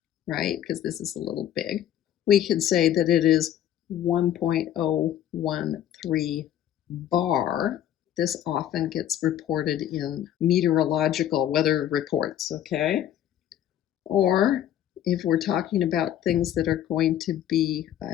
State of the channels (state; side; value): quieter; right; 11.2 dB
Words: right? Because this is a little big. We can say that it is 1.013 bar. This often gets reported in meteorological weather reports, okay? Or if we're talking about things that are going to be